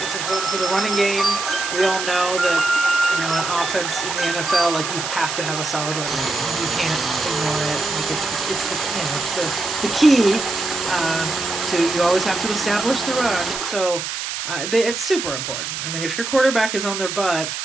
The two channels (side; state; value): right; noise; hiss, 4 dB below the sound